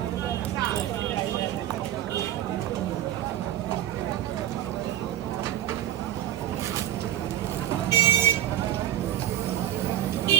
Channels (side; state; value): left; quieter; 12.1 dB